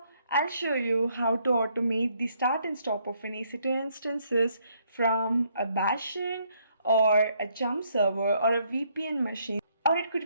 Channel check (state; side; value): inverted; both; correlation -0.70